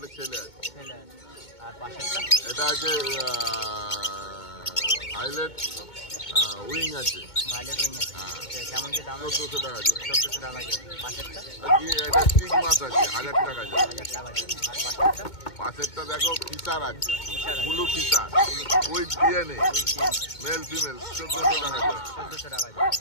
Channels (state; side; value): late; right; 2.2 ms